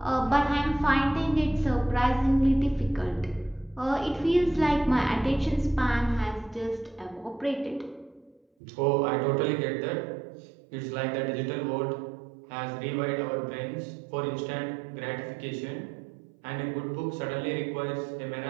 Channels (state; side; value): drops out; left; at 8.4 s